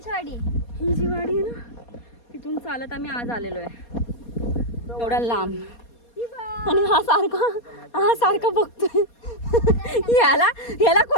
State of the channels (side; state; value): right; late; 4.2 ms